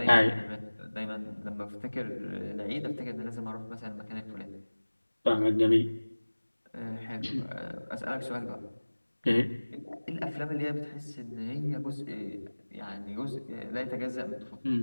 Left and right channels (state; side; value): inverted; both; correlation -1.00